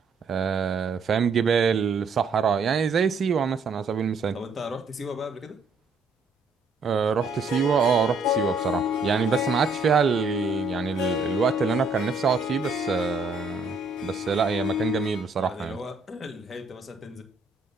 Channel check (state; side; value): quieter; left; 3.6 dB